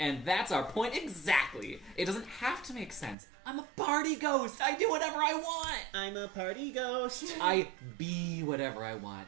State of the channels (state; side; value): drops out; left; at 3.2 s